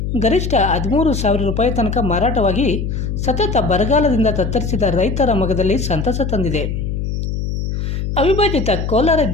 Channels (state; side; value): noise; left; hum, 3 dB below the sound